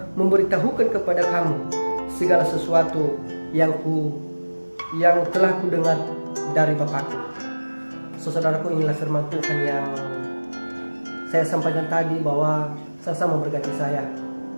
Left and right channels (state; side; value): inverted; both; correlation -1.00